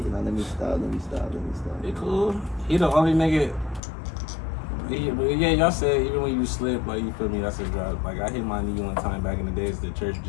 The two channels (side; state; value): right; drops out; at 3.8 s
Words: me stop. He cool. He the only nigga. But yeah, y'all said even when you slip, like you feel me, that's a drop. Like I hit my knee one time back in the days at the church